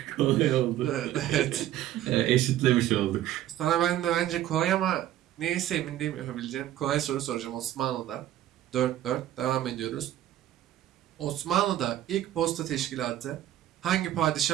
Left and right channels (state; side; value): quieter; left; 12.9 dB